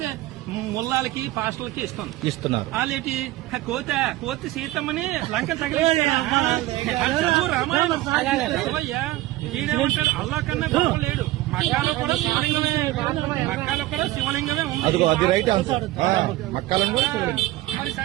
ముల్లాలకి పాస్టర్లకి ఇస్తున్నారు. వాళ్ళేటి కోతి సీతమ్మని లంక తగిలిస్తారు. రామాయణం చదవయ్యా. ఈడేమంటాడు అల్లా కన్నా గొప్ప లేడు. మక్కాలో కూడా శివలింగమే ఉంది. మరి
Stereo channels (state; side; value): quieter; left; 17.1 dB